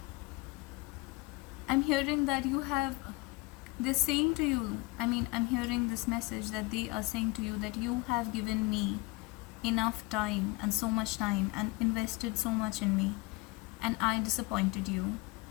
I'm hearing that you have, they're saying to you, I'm hearing this message that they are saying to you that you have given me enough time and so much time and invested so much in me, and I disappointed you.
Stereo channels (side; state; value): right; quieter; 23.2 dB